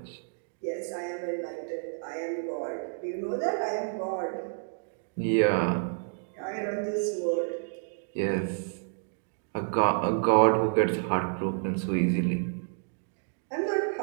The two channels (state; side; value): silent; left; digital silence